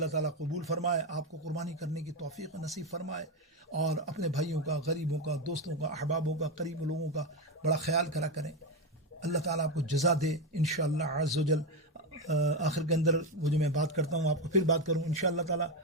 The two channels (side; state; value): both; normal; correlation 0.10